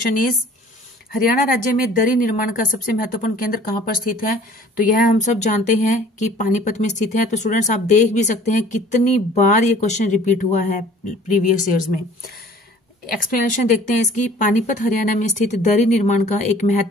is Haryana राज्य में दरी निर्माण का सबसे महत्वपूर्ण केंद्र कहां पर स्थित है। तो यह हम सब जानते हैं कि पानीपत में स्थित है। तो स्टूडेंट्स आप देख भी सकते हैं कितनी बार ये क्वेश्चन रिपीट हुआ है प्रीवियस ईयर्स में। एक्सप्लेनेशन देखते हैं इसकी। पानीपत हरियाणा में स्थित दरी निर्माण का एक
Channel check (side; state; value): both; normal; correlation 0.51